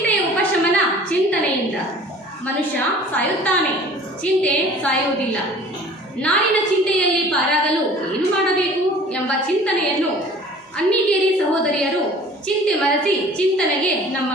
ಉಪಶಮನ ಚಿಂತನೆಯಿಂದ. ಮನುಷ್ಯ ಸಾಯುತ್ತಾನೆ, ಚಿಂತೆ ಸಾಯುವುದಿಲ್ಲ. ನಾಡಿನ ಚಿಂತೆಯಲ್ಲಿ ಪಾರಾಗಲು ಏನು ಮಾಡಬೇಕು ಎಂಬ ಚಿಂತನೆಯನ್ನು ಅನ್ನಿಗೇರಿ ಸಹೋದರಿಯರು ಚಿಂತೆ ಮರೆಸಿ ಚಿಂತನೆಗೆ ನಮ್ಮ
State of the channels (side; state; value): both; normal; correlation 0.47